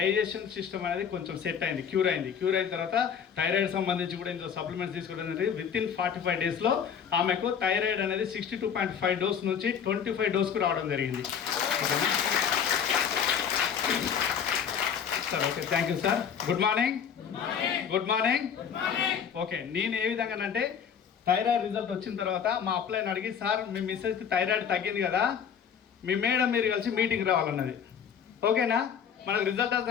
సిస్టమ్ అనేది కొంచెం సెట్ అయింది, క్యూర్ అయిన తర్వాత థైరాయిడ్ సంబంధించి కూడా ఇందులో సప్లిమెంట్స్ తీసుకోవడం అనేది వితిన్ 45 డేస్లో ఆమెకు థైరాయిడ్ అనేది 62.5 డోస్ నుంచి 25 డోస్కు రావడం జరిగింది. ఓకేనా sir? Okay, thank you sir. Good morning. Okay, నేను ఏ విధంగా అంటే థైరాయిడ్ రిజల్ట్ వచ్చిన తర్వాత మా అప్లైన్ అడిగి సార్ మీ మిస్సెస్కి థైరాయిడ్ తగ్గింది కదా, మీ మేడం మీరు కలిసి మీటింగ్ రావాలన్నది. ఓకేనా? మనకు రిజల్ట్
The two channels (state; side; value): quieter; right; 7.6 dB